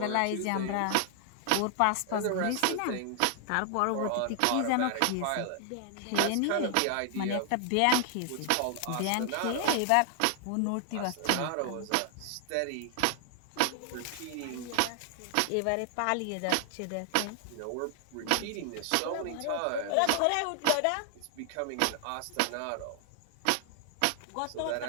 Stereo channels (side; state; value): both; different; correlation 0.00